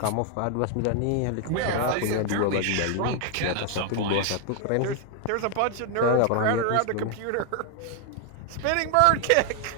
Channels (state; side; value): different; both; correlation 0.00